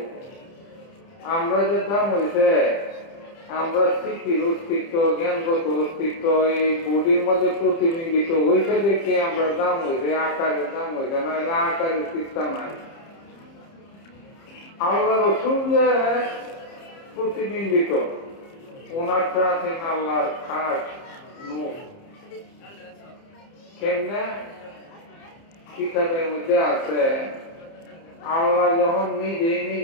আমরা যে দাম হয়েছে আমরা স্মৃতির অস্তিত্ব, জ্ঞানগত অস্তিত্ব এই বডির মধ্যে প্রতিবিম্বিত হয়েছে দেখে আমরা দাম হয়েছে, আকারের দাম হয়েছে না, আকারের চিন্তা নাই। আল্লাহ রসুল যে প্রতিবিম্বিত, ওনারটা আছেন আল্লাহর খাস নূর। কেমনে? কিতাবের মধ্যে আছে আল্লাহ যখন নিজেই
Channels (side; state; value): right; late; 30 ms